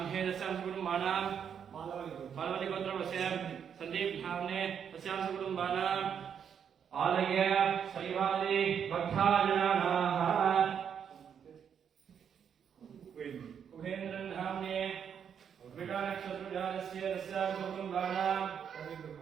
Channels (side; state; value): left; quieter; 7.9 dB